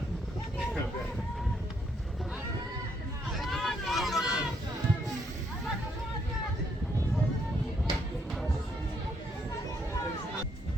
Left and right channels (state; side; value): normal; both; correlation 0.73